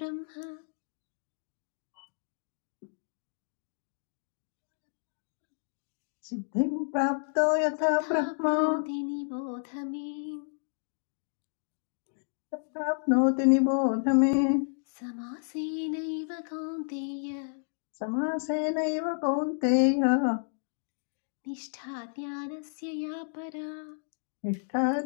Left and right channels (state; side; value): silent; right; digital silence